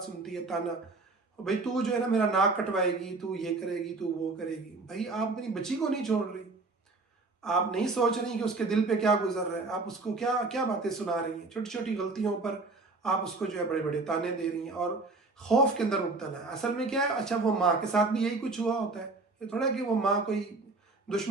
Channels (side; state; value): left; quieter; 3.5 dB